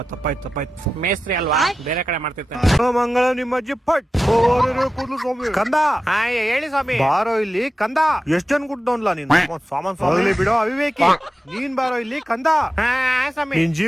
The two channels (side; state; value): both; normal; correlation 0.93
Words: ತಪ್ಪಾಯ್ತು. ಮೇಸ್ತ್ರಿ ಅಲ್ವಾ, ಬೇರೆ ಕಡೆ ಮಾಡ್ತಿರ್ತಾನೆ. ಮಂಗಳ ನಿಮ್ಮ ಅಜ್ಜಿ ಪಟ್ ಕೂದ್ಲು ಸ್ವಾಮಿ. ಕಂದ ಹೇಳಿ ಸ್ವಾಮಿ. ಬಾರೋ ಇಲ್ಲಿ ಕಂದ. ಎಷ್ಟ್ ಜನ ಕುಡ್ದವನ್ಲ ನೀನು? ಸಾಮಾನ್ ಬಿಡೋ ಅವಿವೇಕಿ. ನೀನ್ ಬಾರೋ ಇಲ್ಲಿ ಕಂದ. ಸ್ವಾಮಿ, ನಿನ್